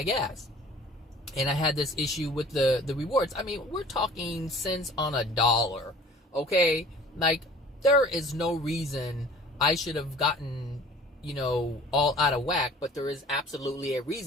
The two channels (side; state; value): both; normal; correlation 0.48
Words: gas. And I had this issue with the rewards. I mean, we're talking cents on a dollar, okay? Like, there is no reason I should have gotten, all out of whack, but there is absolutely a